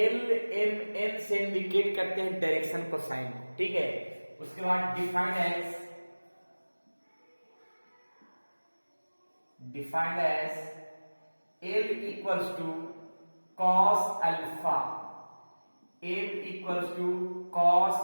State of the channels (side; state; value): both; inverted; correlation -1.00